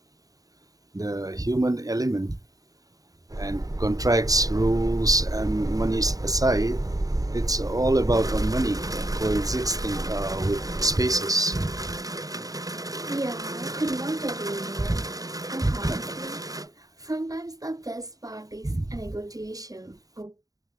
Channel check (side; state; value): left; late; 0.18 ms